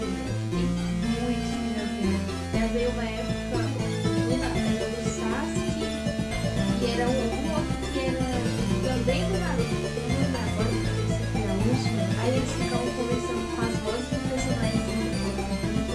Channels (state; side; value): identical; both; correlation 1.00